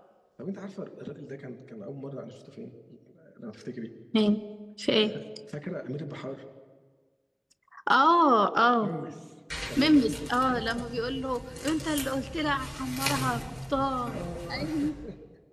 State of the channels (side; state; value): both; identical; correlation 1.00